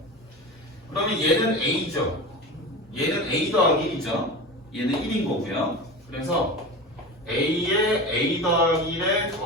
그러면 얘는 a죠. 얘는 a 더하기 1이죠. 얘는 1인 거고요. 그래서 a에 a 더하기 1에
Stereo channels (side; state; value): both; normal; correlation 0.29